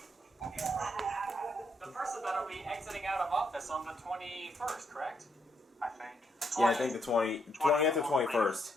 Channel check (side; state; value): both; normal; correlation 0.76